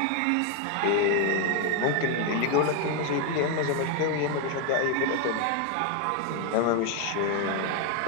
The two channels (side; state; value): both; different; correlation 0.01